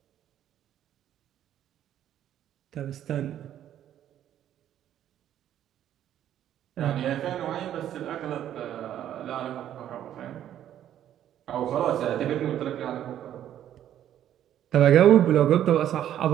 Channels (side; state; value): left; quieter; 11.1 dB